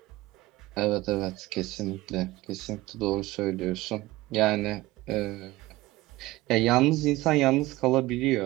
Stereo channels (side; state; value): left; quieter; 18.4 dB